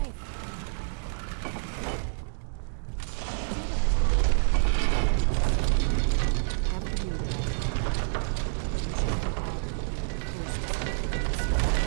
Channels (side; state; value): left; silent; digital silence